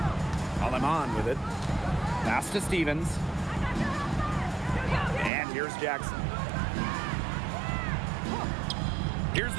Aleman with it. Pass to Stevens. And here's Jackson. Here's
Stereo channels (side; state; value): left; drops out; at 5.3 s